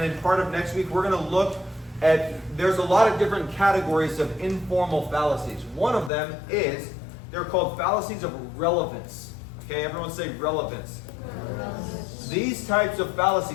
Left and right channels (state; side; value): drops out; right; at 6.1 s